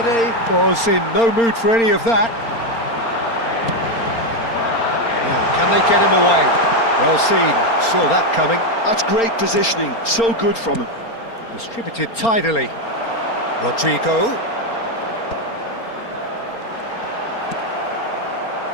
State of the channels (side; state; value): right; late; 4.3 ms